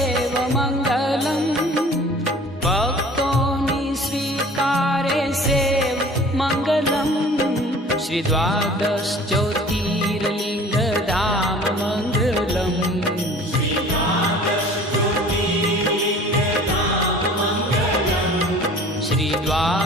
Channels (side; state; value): both; normal; correlation 0.46